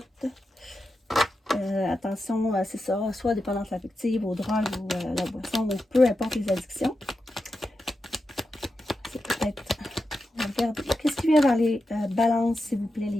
Attention, c'est ça, soit dépendance affective, aux drogues ou la boisson, ou peu importe les addictions. C'est peut-être... On va regarder. Qu'est-ce qui vient vers les balances, s'il vous plaît,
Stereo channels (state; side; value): normal; both; correlation 0.89